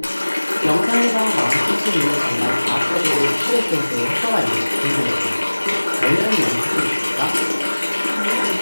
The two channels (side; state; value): both; inverted; correlation -1.00